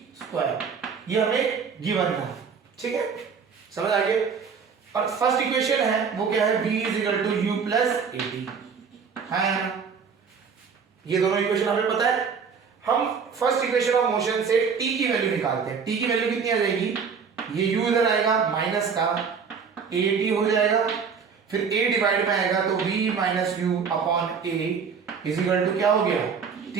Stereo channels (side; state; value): left; quieter; 6.1 dB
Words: square, ये हमें गिवन था, ठीक है, समझ आ गया। और फर्स्ट इक्वेशन है वो क्या है, v is equal to u plus 80, हाँ यार ये दोनों इक्वेशन हमें पता है। हम फर्स्ट इक्वेशन ऑफ मोशन से t की वैल्यू निकालते हैं, t की वैल्यू कितनी आ जाएगी, ये u इधर आएगा माइनस का at हो जाएगा, फिर a डिवाइड में आएगा तो v minus u upon a is equal to क्या हो गया